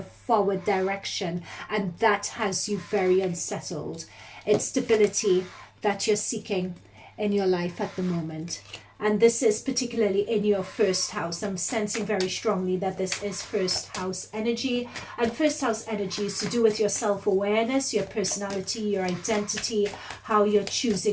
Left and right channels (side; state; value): both; identical; correlation 1.00